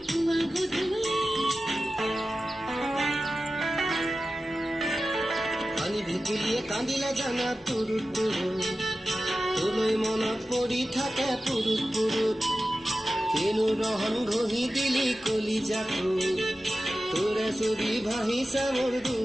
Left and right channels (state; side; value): normal; both; correlation 0.94